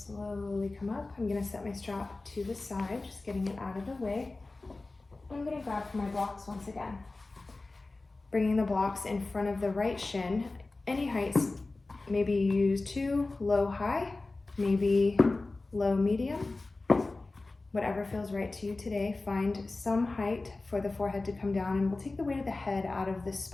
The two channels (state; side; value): quieter; right; 3.3 dB